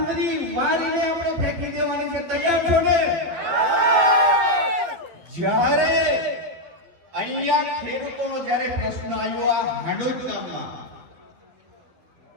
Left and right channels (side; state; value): left; late; 12 ms